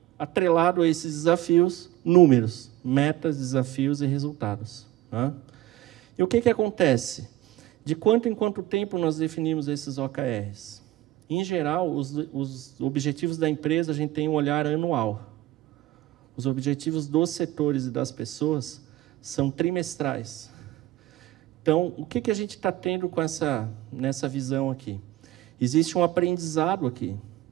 atrelado a esses desafios, números, metas, desafios e resultados. Tá? E o que acontece? De quanto em quanto tempo nós definimos esses OKRs? Em geral, os objetivos da empresa, a gente tem um olhar anual. Os objetivos dos setores e das pessoas são trimestrais. Então, o que a gente está tendo nessa visão aqui? Existe um aprendizado aqui.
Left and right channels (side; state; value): left; quieter; 15.6 dB